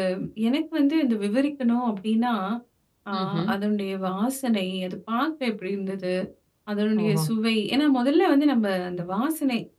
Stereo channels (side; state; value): both; identical; correlation 1.00